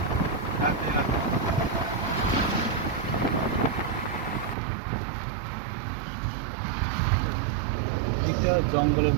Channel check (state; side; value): drops out; left; at 4.5 s